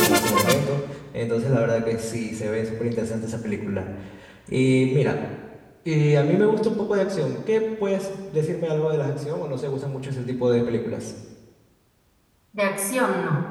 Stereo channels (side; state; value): both; identical; correlation 1.00